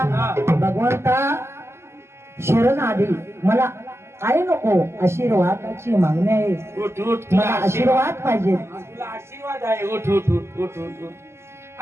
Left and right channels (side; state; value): left; late; 0.13 ms